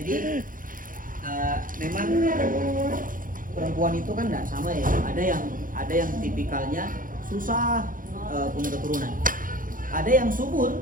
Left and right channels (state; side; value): late; left; 0.40 ms